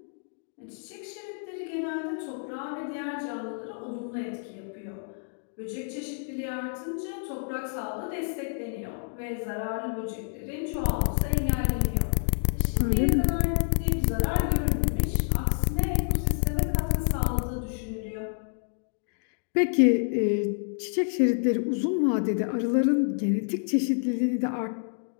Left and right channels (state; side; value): silent; right; digital silence